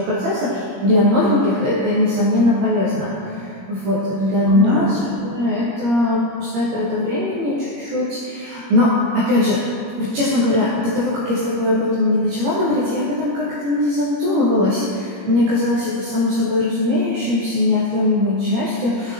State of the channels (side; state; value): left; late; 21 ms